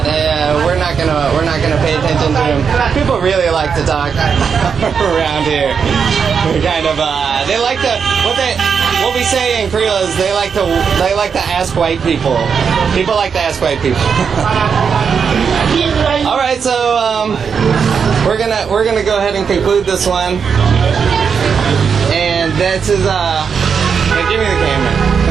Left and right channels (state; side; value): quieter; left; 6.4 dB